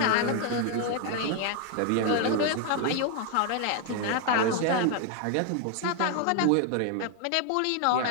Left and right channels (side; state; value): both; different; correlation 0.01